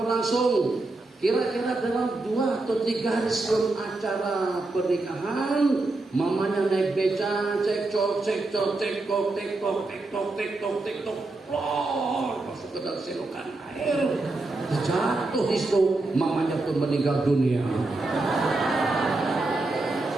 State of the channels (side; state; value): left; quieter; 3.1 dB